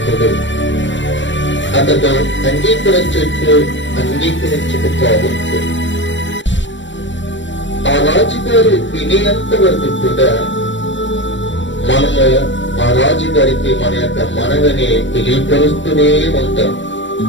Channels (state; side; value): late; right; 0.54 ms